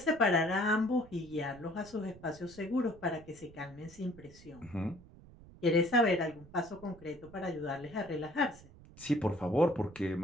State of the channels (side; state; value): right; noise; rumble, 21 dB below the sound